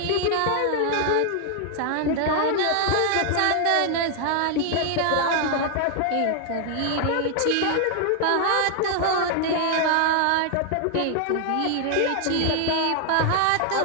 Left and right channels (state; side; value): different; both; correlation 0.00